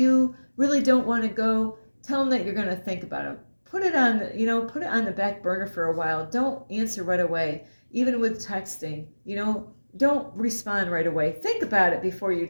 really don't want to go, tell them that you're going to think about it. Put it on, you know, put it on the back burner for a while. Don't answer right away. Even with texting, you know, don't respond right away. Think about it before you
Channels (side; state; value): both; inverted; correlation -1.00